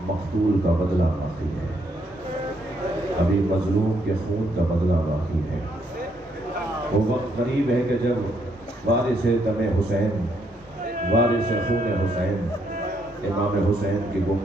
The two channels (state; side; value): normal; both; correlation 0.73